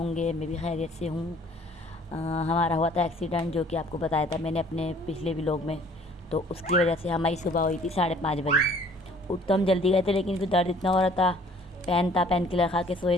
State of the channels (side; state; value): both; normal; correlation 0.55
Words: मैं भी खैरियत से हूँ। हमारा हुआ था एक्सीडेंट, जो कि आपको बताया था मैंने अपने पिछले व्लॉग में। तो उसकी वजह से हमारी सुबह हुई थी 5:30 बजे। उठ तो हम जल्दी गए थे, लेकिन फिर दर्द इतना हो रहा था। पेन किलर खा के सोए